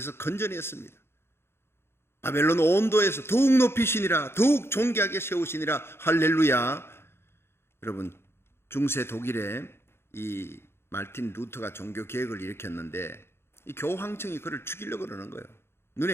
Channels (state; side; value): late; right; 0.12 ms